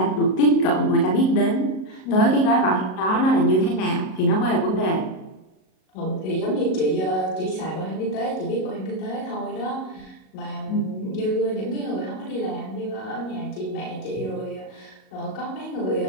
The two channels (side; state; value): right; late; 37 ms